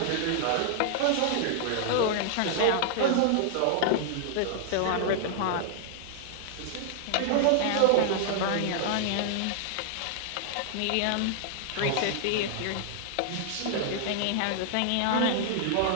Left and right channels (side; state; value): both; different; correlation -0.01